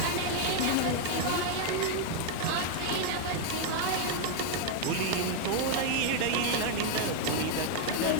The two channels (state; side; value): different; both; correlation 0.00